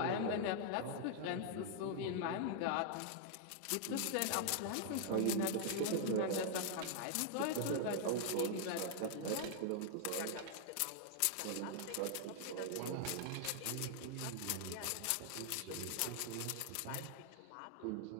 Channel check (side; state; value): both; different; correlation -0.01